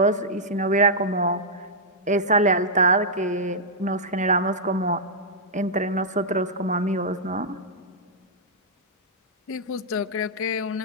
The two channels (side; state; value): both; normal; correlation -0.09